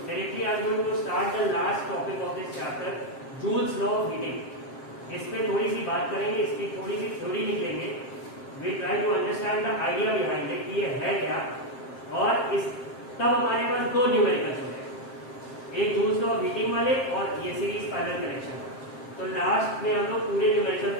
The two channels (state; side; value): late; right; 7.6 ms